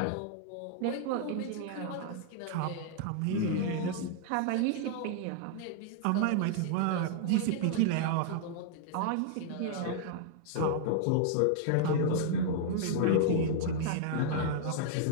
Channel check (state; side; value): different; both; correlation -0.01